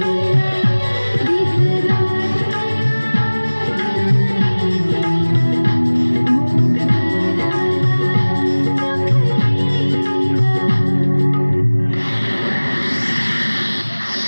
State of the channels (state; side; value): inverted; both; correlation -1.00